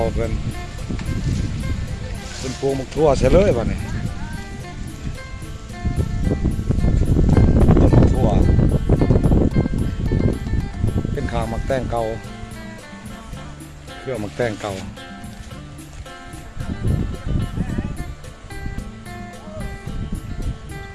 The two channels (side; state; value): both; identical; correlation 1.00